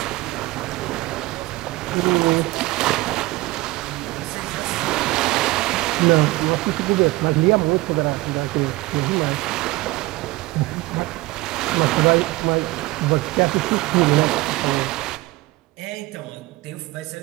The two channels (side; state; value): left; quieter; 19.9 dB